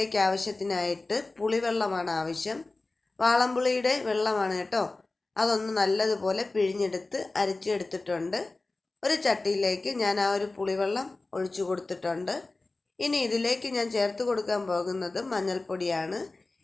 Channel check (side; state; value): right; quieter; 3.3 dB